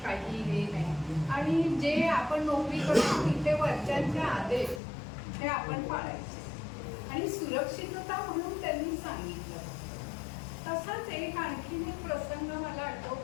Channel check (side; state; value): right; drops out; at 4.8 s